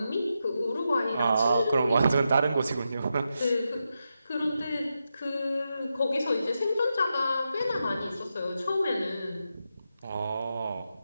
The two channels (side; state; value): both; inverted; correlation -0.87